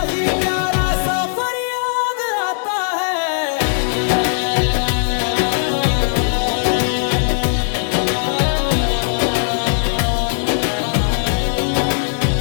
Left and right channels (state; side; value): silent; right; digital silence